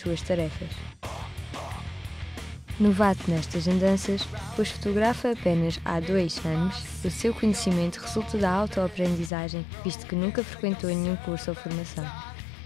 tarefas. Novato nestas andanças, pois fotografa apenas há 2 anos, o seu conhecimento resulta da autoaprendizagem, visto que nunca frequentou nenhum curso ou formação.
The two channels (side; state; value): right; drops out; at 9.3 s